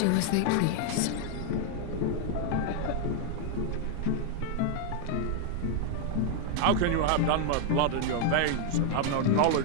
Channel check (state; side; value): different; both; correlation 0.00